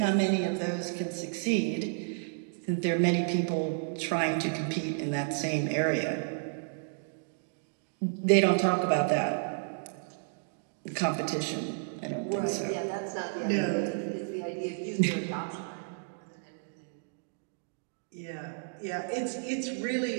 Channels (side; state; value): left; silent; digital silence